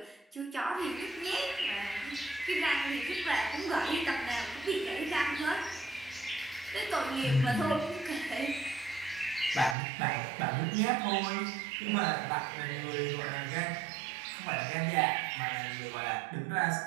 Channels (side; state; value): left; drops out; at 9.8 s